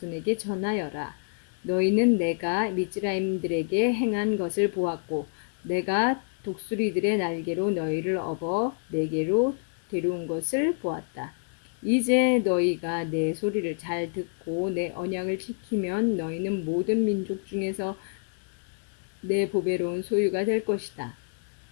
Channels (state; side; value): silent; right; digital silence